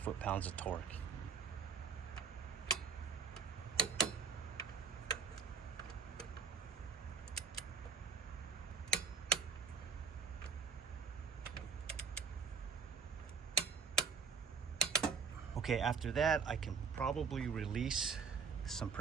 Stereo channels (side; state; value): left; quieter; 5.5 dB